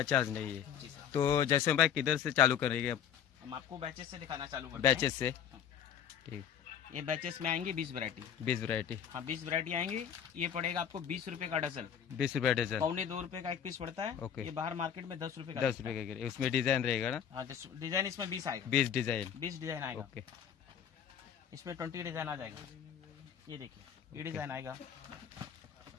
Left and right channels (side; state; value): right; quieter; 8.8 dB